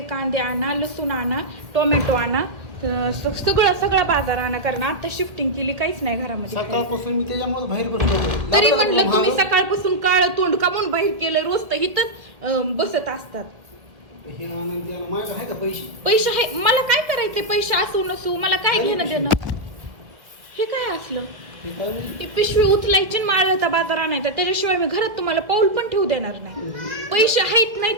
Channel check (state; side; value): late; left; 2.1 ms